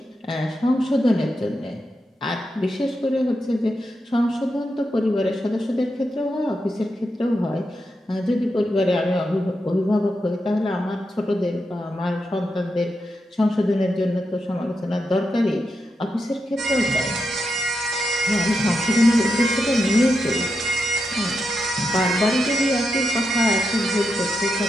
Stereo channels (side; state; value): both; normal; correlation 0.85